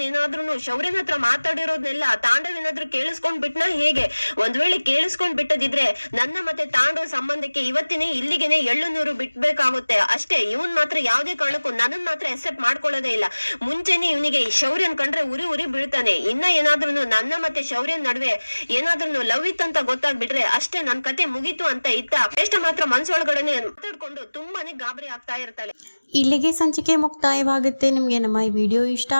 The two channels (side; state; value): both; inverted; correlation -1.00